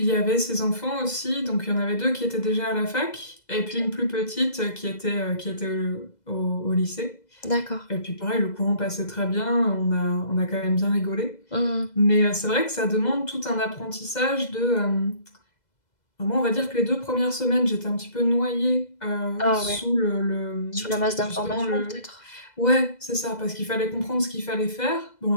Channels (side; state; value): right; late; 2.0 ms